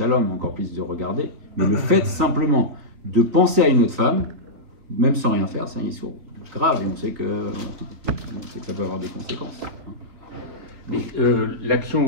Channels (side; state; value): left; late; 3.8 ms